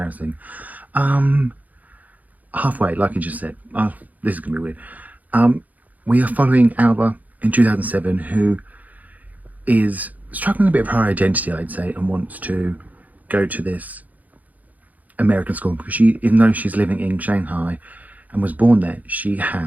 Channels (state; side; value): late; left; 0.078 ms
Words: Halfway, like I just said. This is gonna be weird. We are following Alva in 2007, who is struggling a bit of her identity, I'd say, and wants to go to this American school because even though she's living in Shanghai and was born there, she